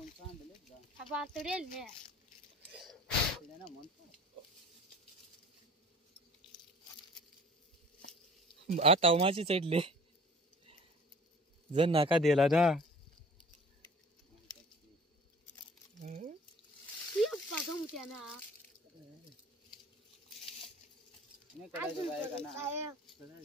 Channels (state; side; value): normal; both; correlation 0.47